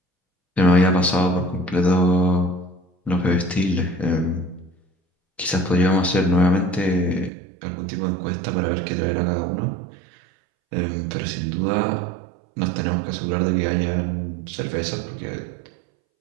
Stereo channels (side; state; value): left; drops out; at 7.3 s